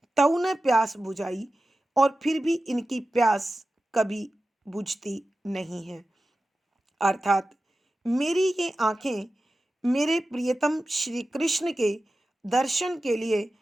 तऊ ने प्यास बुझाई, और फिर भी इनकी प्यास कभी बुझती नहीं है। अर्थात मेरी ये आंखें मेरे प्रियतम श्री कृष्ण के दर्शन के लिए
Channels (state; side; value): normal; both; correlation 0.94